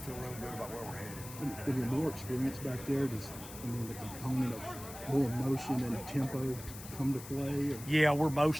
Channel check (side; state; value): left; noise; hiss, 13 dB below the sound